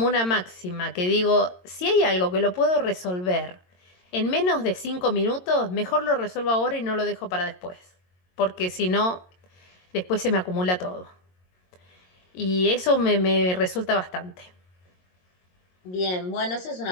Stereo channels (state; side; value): late; right; 22 ms